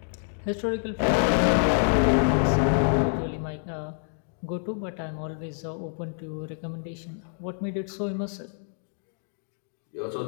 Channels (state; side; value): silent; right; 60 dB below the other